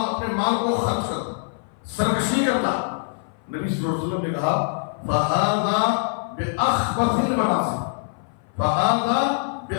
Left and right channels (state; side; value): silent; right; 57 dB below the other